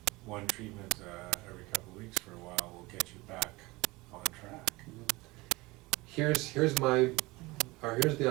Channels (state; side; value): quieter; left; 22.2 dB